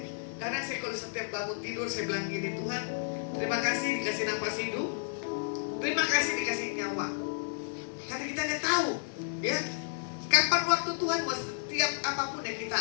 Karena saya kalau setiap bangun tidur, saya bilang gini, Tuhan, terima kasih dikasih nafas hidup, terima kasih dikasih nyawa. Karena kita tidak tahu, ya, kapan waktu Tuhan mau setiap apapun yang kita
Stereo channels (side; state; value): right; silent; 57 dB below the other